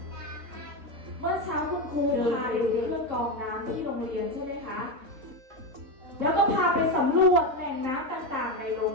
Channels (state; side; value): late; left; 3.7 ms